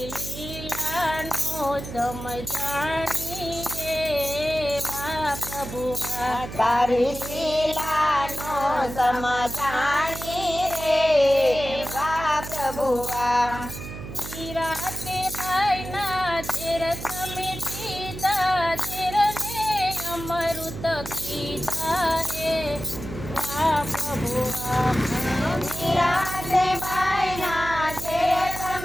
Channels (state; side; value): noise; right; hum, 10 dB below the sound